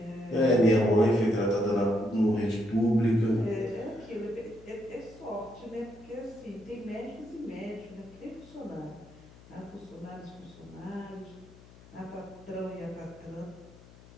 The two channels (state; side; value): noise; left; hum, 22 dB below the sound